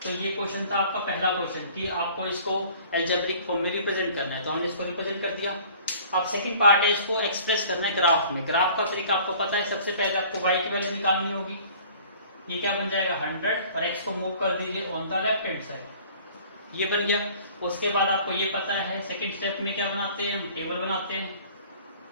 ये क्वेश्चन था आपका पहला क्वेश्चन कि आपको इसको अलजेब्रिक फॉर्म में रिप्रेजेंट करना है, तो हमने इसको रिप्रेजेंट कर दिया। अब सेकंड पार्ट है, इसको एक्सप्रेस करना है ग्राफ में। ग्राफ का तरीका आपको पता है, सबसे पहले आपको y की वैल्यू निकालनी होगी। ये क्या बन जाएगा? 100, और x को मूव कर दीजिए on the left hand side, ये बन गया। उसके बाद आपको ये पता है सेकंड स्टेप में क्या बनाते हैं? हम टेबल बनाते हैं।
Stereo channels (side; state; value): both; inverted; correlation -0.50